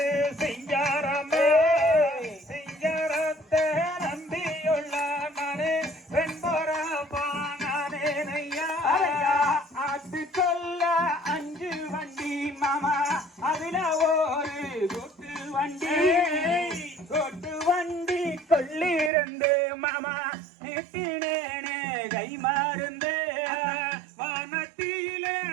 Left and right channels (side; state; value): left; drops out; at 19.1 s